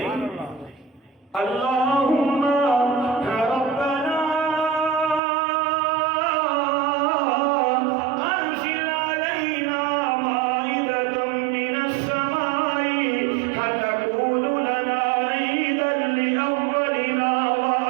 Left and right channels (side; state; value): left; drops out; at 5.2 s